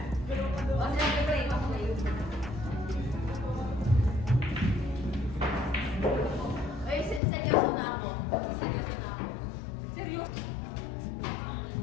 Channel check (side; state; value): right; drops out; at 7.2 s